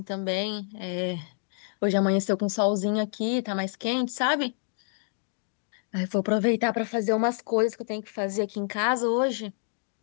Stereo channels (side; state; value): right; silent; digital silence